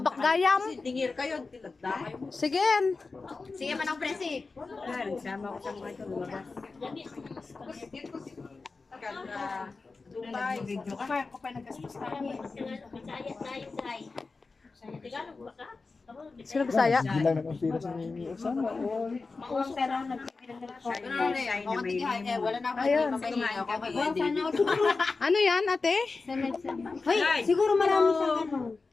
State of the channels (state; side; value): quieter; right; 4.0 dB